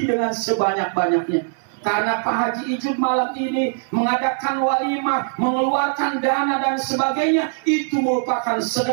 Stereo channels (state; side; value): silent; left; digital silence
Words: dengan sebanyak-banyaknya. Karena Pak Haji Ijun malam ini mengadakan walimah, mengeluarkan dana dan sebagainya, itu merupakan